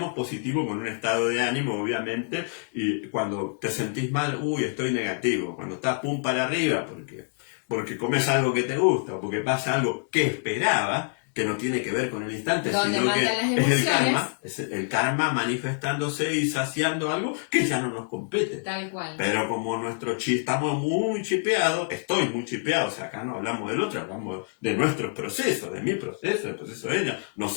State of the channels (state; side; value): silent; right; 61 dB below the other